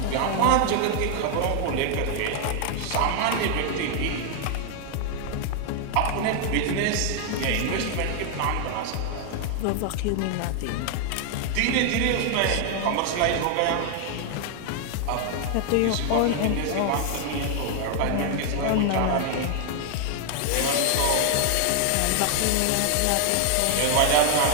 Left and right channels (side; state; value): both; different; correlation 0.00